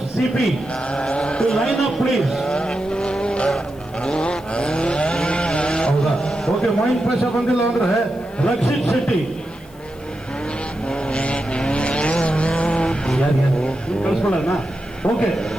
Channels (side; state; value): left; noise; hiss, 27 dB below the sound